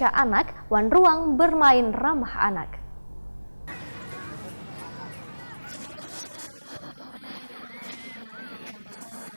anak, wan ruang bermain ramah anak. Setelah sukses dalam pembangunan air mancur menari di kawasan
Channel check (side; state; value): both; inverted; correlation -1.00